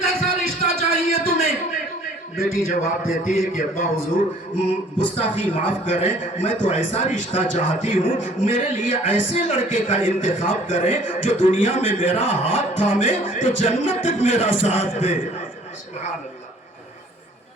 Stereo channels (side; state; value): both; normal; correlation 0.55